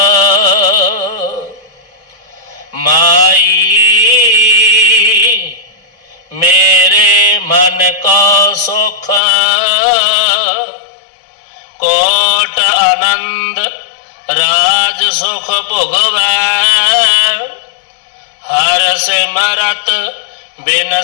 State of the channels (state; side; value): drops out; right; at 9.2 s